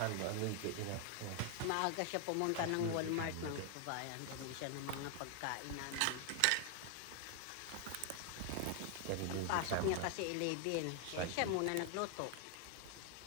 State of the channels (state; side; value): different; both; correlation 0.00